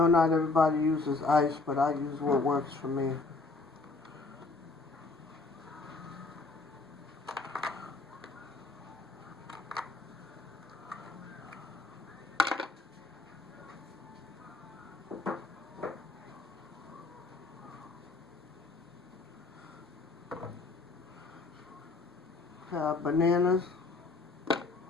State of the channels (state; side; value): quieter; right; 3.6 dB